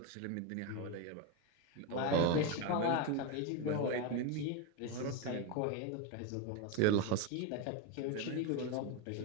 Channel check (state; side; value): different; both; correlation 0.03